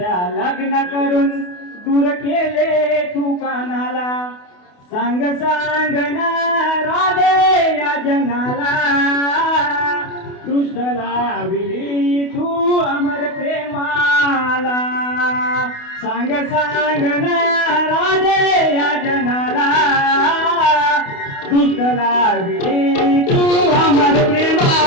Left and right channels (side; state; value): right; late; 28 ms